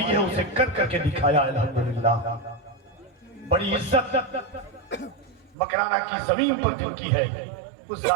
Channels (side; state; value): left; drops out; at 5.6 s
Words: है उसे कर करके दिखाया। अल्हम्दुलिल्लाह बड़ी इज्जत मकराना की जमीन पर जिनकी है उस